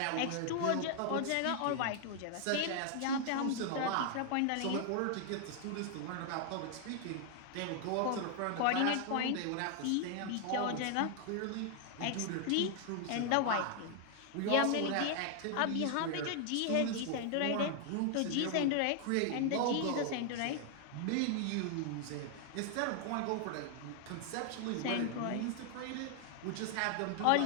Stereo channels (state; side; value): different; both; correlation 0.00